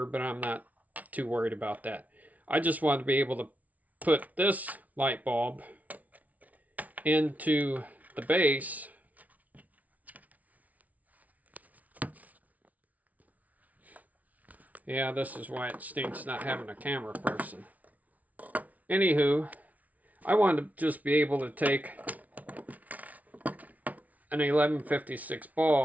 but I'm not too worried about that. I just want to be able to put this light bulb into the base. Yeah, this is why it stinks not having a camera person. Anywho, I wanted to just be able to take an 1156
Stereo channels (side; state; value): left; late; 0.072 ms